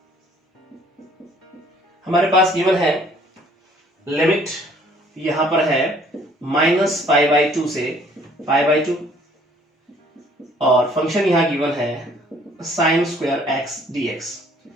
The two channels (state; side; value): normal; both; correlation 0.58